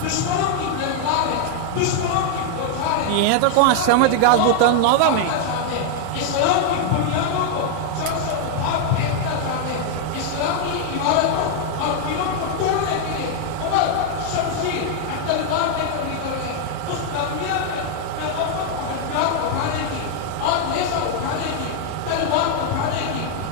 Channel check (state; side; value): different; both; correlation 0.00